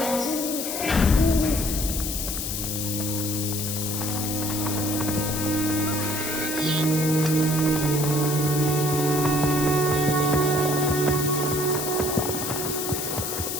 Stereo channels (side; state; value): left; noise; hiss, 3 dB below the sound